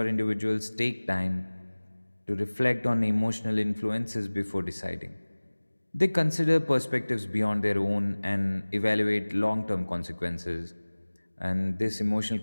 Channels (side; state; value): both; inverted; correlation -1.00